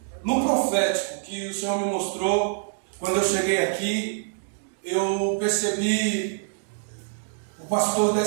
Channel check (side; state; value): left; silent; digital silence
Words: no profético que o Senhor me mostrou quando eu cheguei aqui. Eu percebi o pastor